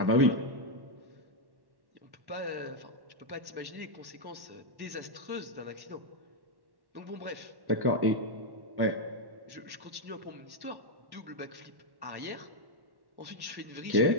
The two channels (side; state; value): left; late; 1.1 ms